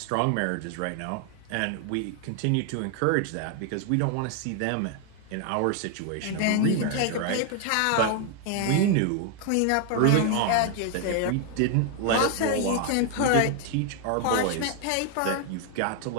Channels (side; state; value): both; different; correlation 0.00